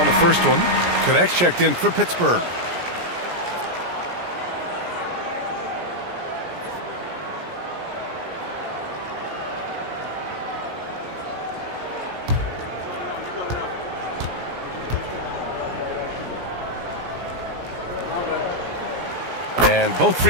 the first one. Connects checked in for Pittsburgh. And both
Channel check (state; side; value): late; left; 17 ms